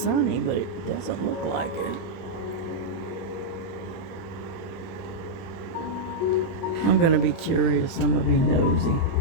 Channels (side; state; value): right; late; 31 ms